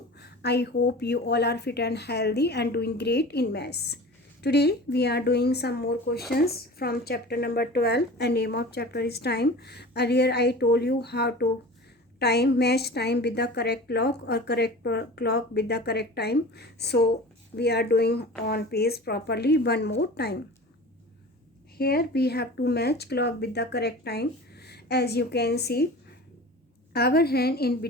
I hope you all are fit and healthy and doing great in maths. Today we are doing some more questions from chapter number 12 and name of chapter is time. Earlier I told you how to match time with the correct clock or correct clock with the correct time. So we are doing on pace properly one more time. Here we have to match clock with the correct time. As you can see, our hand in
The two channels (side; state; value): both; normal; correlation 0.37